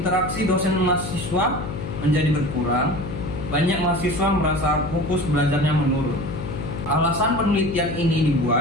dosen mahasiswa menjadi berkurang. Banyak mahasiswa merasa fokus belajarnya menurun. Alasan penelitian ini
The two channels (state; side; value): noise; left; hum, 7 dB below the sound